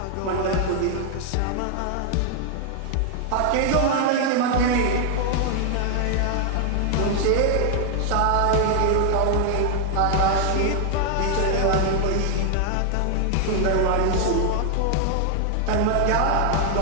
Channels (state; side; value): different; both; correlation 0.00